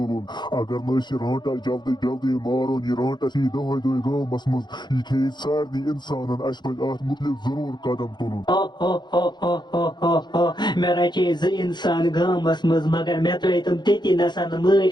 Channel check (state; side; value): late; right; 0.21 ms